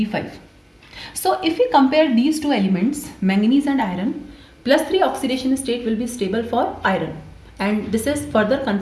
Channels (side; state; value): both; identical; correlation 1.00